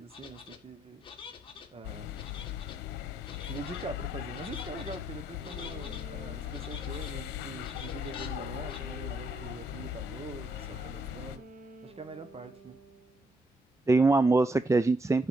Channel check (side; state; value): both; normal; correlation 0.74